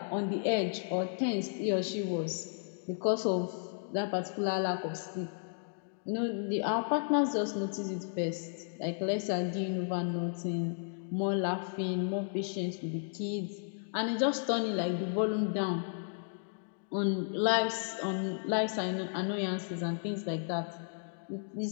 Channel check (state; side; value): silent; right; digital silence